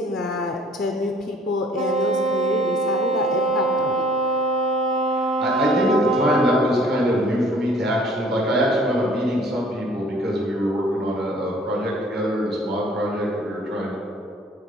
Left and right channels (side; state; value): both; normal; correlation 0.55